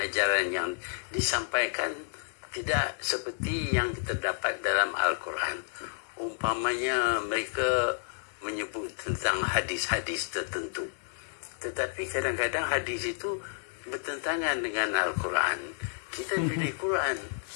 yang disampaikan tidak seperti yang kita dapat dalam Al-Quran. Umpamanya mereka menyebut tentang hadis-hadis tertentu, tetapi kadang-kadang hadis itu bertentangan dengan Al-Quran. Kita pilih Quran,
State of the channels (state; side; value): silent; right; digital silence